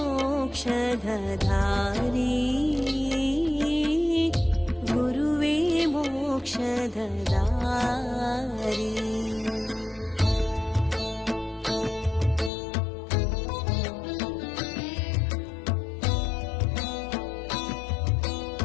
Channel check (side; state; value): right; drops out; at 12.5 s